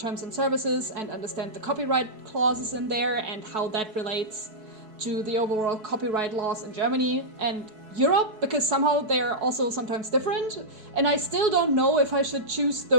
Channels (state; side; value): late; left; 4.6 ms